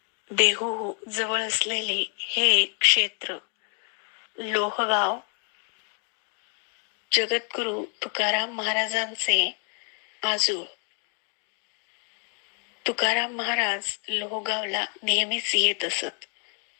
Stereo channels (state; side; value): quieter; right; 39.6 dB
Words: देहू जवळ असलेले हे क्षेत्र लोहगाव जगद्गुरु तुकाराम महाराजांचे आजोळ. तुकाराम महाराज लोहगावला नेहमीच येत असत.